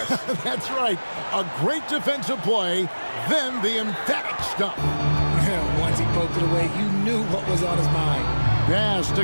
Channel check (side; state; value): both; inverted; correlation -1.00